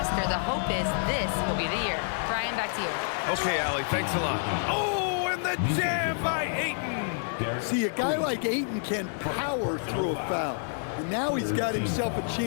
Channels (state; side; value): silent; right; 59 dB below the other